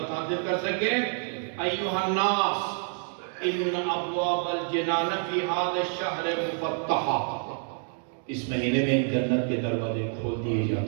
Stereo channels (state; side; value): silent; left; 57 dB below the other